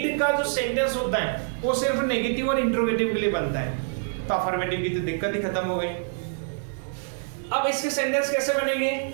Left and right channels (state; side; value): silent; left; 61 dB below the other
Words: का जो सेंटेंस होता है वो सिर्फ नेगेटिव और इंट्रोगेटिव के लिए बनता है। तो अफर्मेटिव की तो दिक्कत ही खत्म हो गई। अब इसके सेंटेंस कैसे बनेंगे?